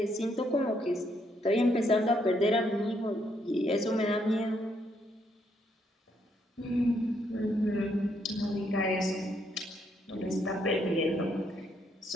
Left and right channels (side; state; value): both; normal; correlation 0.74